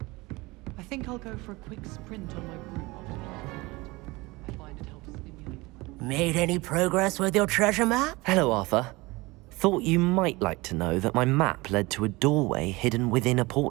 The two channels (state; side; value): quieter; left; 22.7 dB